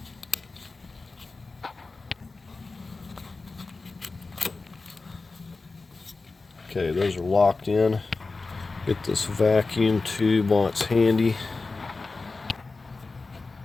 Okay, those are locked in. Get this vacuum tube while it's handy.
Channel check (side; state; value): right; quieter; 3.8 dB